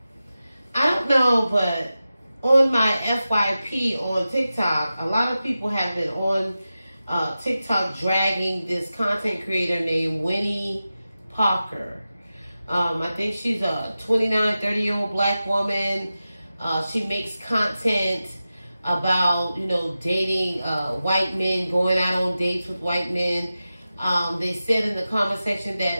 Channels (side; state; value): both; inverted; correlation -0.93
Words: don't know, but on my FYP on TikTok, a lot of people have been on TikTok dragging this content creator named Winnie Parker. I think she's a 29, 30-year-old black woman. She makes content about, dating white men, going out on dates with white men. They said in the comment section that